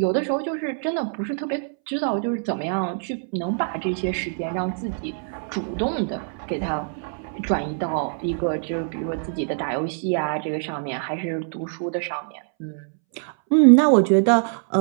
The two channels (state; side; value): silent; left; 63 dB below the other